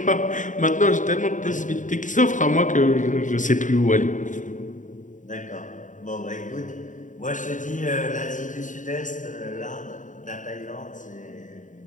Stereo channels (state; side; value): late; right; 0.37 ms